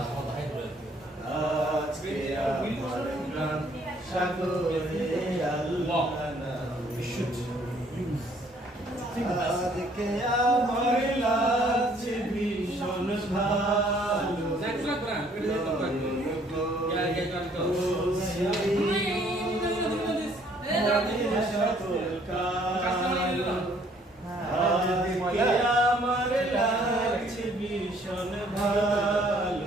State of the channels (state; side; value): normal; both; correlation 0.62